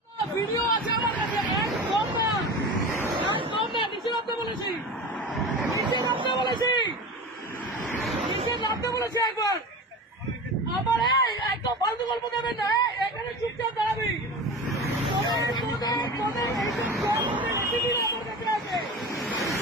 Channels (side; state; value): both; normal; correlation 0.31